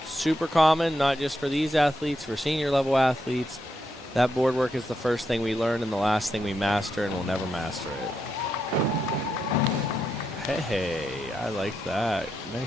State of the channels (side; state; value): both; normal; correlation 0.83